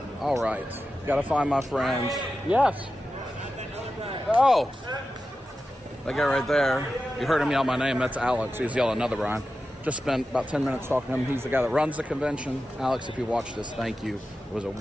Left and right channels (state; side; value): normal; both; correlation 0.92